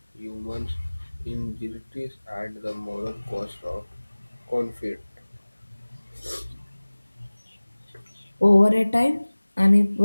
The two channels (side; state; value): both; inverted; correlation -1.00